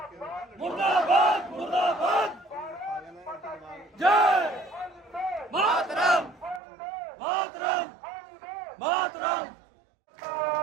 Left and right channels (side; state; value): left; drops out; at 6.6 s